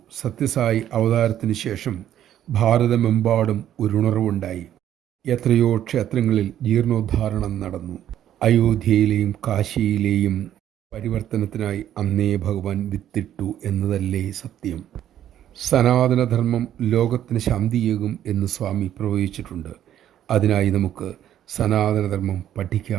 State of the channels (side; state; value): left; quieter; 11.1 dB